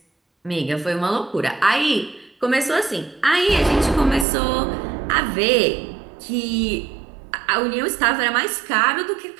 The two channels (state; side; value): drops out; left; at 4.2 s